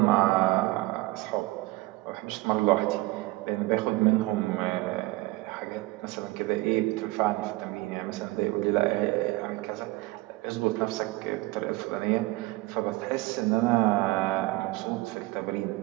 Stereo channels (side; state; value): left; quieter; 20.7 dB